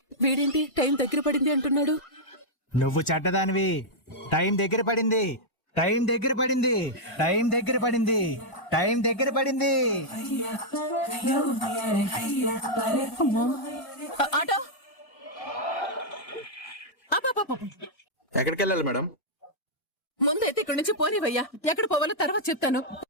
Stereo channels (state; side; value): late; right; 1.6 ms